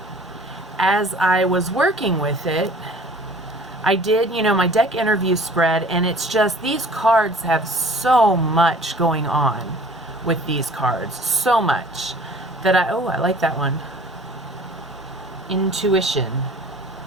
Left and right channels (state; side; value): normal; both; correlation 0.49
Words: as I was working with it, I did, my deck interview spread, and it's just, these cards have so much going on with these cards. So much that I like that one. Intuition.